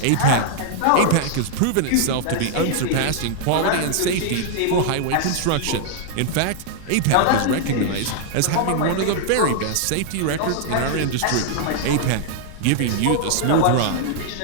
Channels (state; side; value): different; both; correlation -0.01